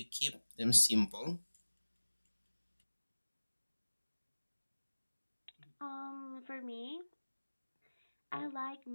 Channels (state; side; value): inverted; both; correlation -1.00